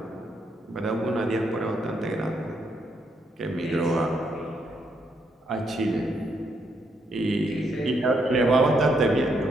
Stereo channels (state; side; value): normal; both; correlation 0.76